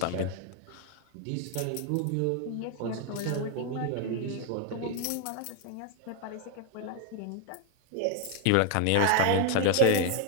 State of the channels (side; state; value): both; different; correlation 0.00